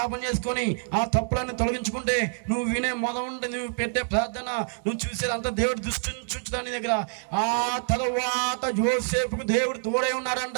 చేసుకొని ఆ తప్పులన్నీ తొలగించుకుంటే నువ్వు వినే మొదలుండి నువ్వు పెట్టే ప్రార్థన నువ్వు చూసేదంతా దేవుడు దృష్టించుంచుతాడు నీ దగ్గర. ఆ తరువాత యోసేపుకు దేవుడు తోడై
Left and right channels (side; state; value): left; silent; 58 dB below the other